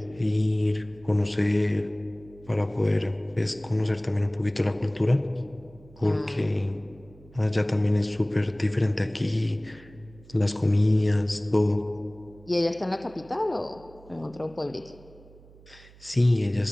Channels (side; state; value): right; noise; hum, 23 dB below the sound